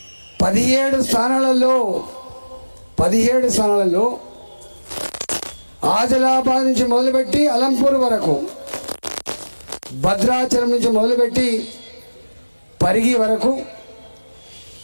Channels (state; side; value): inverted; both; correlation -1.00